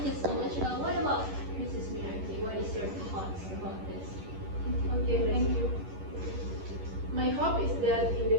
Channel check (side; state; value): left; late; 11 ms